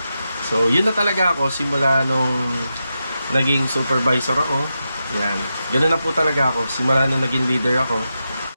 So, yun na talaga ako simula nung naging supervisor ako. Yan. Ganun na po talaga ako simula nung naging leader ako.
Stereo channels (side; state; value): both; inverted; correlation -0.89